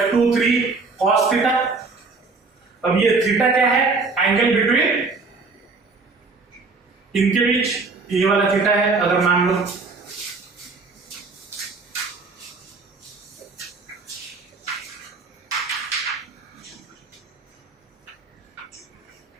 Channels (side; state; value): left; quieter; 4.1 dB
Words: cos theta. अब ये थीटा क्या है, एंगल बिटवीन इनके बीच, ये वाला थीटा है अगर मान लो,